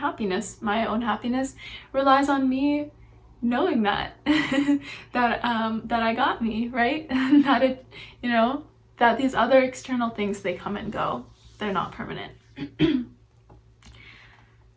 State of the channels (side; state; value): both; identical; correlation 1.00